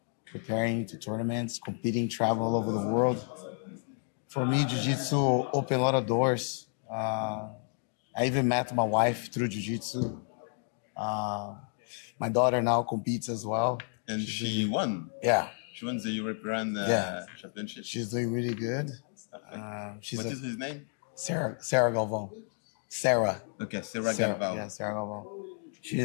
preparing to tournaments, competing, travel all over the world. For me, Jiu-Jitsu opened a lot of doors. I even met my wife through Jiu-Jitsu. My daughter now competes as well. And she won. Yeah. She won the European Championship. She's doing really good. What is his name? Sarah GALVAO. Sarah. Okay, Sarah GALVAO. Yeah, Sarah GALVAO.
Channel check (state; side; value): silent; right; 57 dB below the other